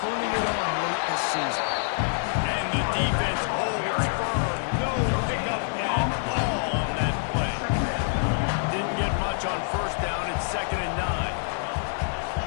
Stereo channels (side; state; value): right; silent; digital silence